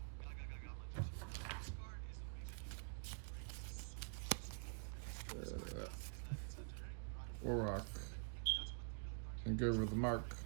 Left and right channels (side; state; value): left; silent; digital silence